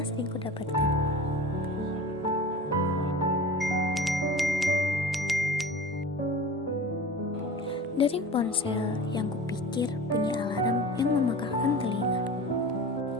sering kudapatkan. Dering ponsel yang kupikir bunyi alarm yang memekakkan telinga.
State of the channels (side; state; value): both; normal; correlation 0.36